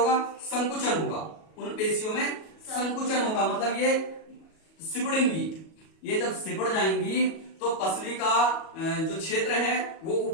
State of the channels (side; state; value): right; late; 37 ms